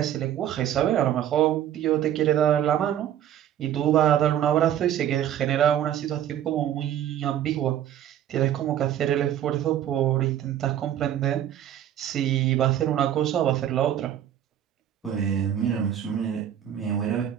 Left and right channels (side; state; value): left; quieter; 10.8 dB